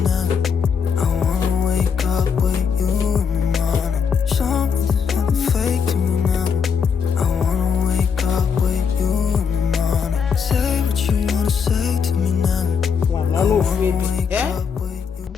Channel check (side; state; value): right; quieter; 6.4 dB